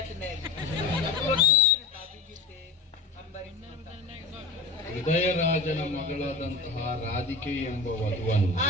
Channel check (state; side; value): quieter; right; 3.8 dB